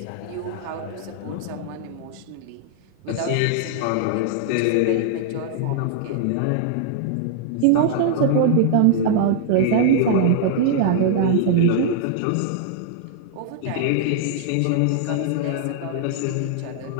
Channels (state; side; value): different; both; correlation -0.01